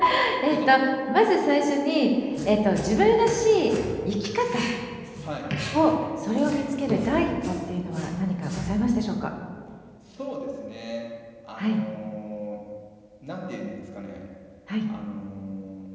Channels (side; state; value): both; identical; correlation 1.00